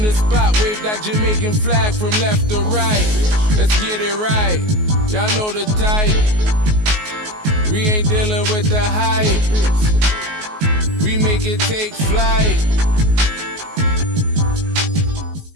the spot, wave that Jamaican flag from left to right. Let's get it right, y'all know the type. We ain't dealing with the hype. We make it take flight.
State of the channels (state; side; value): late; left; 19 ms